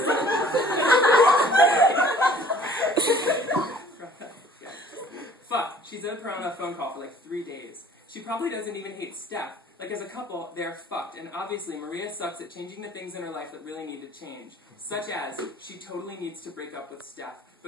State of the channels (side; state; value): both; normal; correlation 0.52